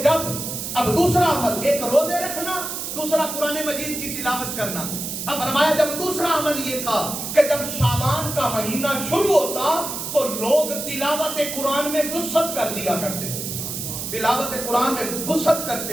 اب دوسرا عمل, ایک روزے رکھنا, دوسرا قرآن مجید کی تلاوت کرنا. اب فرمایا جب دوسرا عمل یہ تھا کہ جب شعبان کا مہینہ شروع ہوتا تو لوگ تلاوت قرآن میں وسعت کر دیا کرتے تھے, تلاوت قرآن میں وسعت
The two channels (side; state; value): right; noise; hiss, 5 dB below the sound